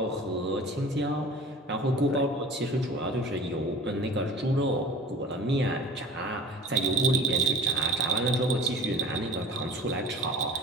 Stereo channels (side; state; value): both; normal; correlation 0.40